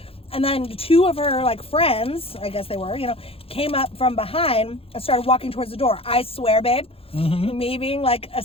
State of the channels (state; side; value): late; right; 0.27 ms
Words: And then two of her like friends, I guess they were, you know, came up from behind and started walking towards the door. I swear, babe, me being like a